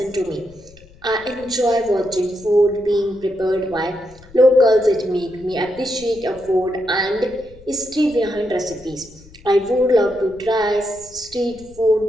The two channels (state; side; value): noise; left; rumble, 23 dB below the sound